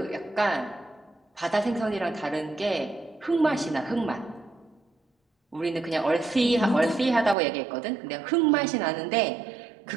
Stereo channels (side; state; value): left; drops out; at 7.4 s